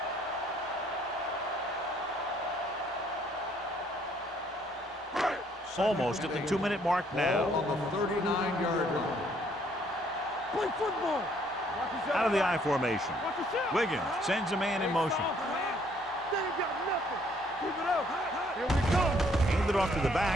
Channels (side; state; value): both; normal; correlation 0.65